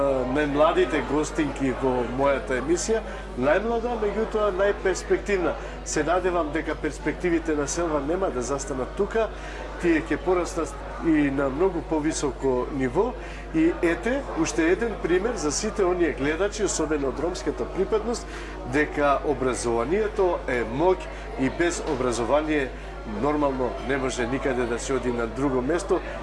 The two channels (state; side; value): identical; both; correlation 1.00